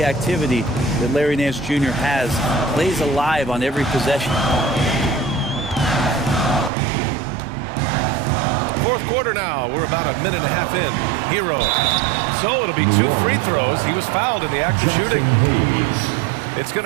activity that Larry Nance Jr. has. Plays alive on every possession. Fourth quarter now. We're about a minute and a half in. Hero. So it'll be 2 free throws. He was fouled in the act of shooting. It's going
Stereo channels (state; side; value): drops out; left; at 6.7 s